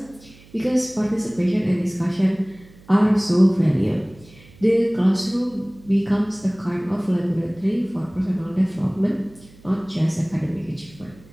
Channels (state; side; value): noise; right; hum, 24 dB below the sound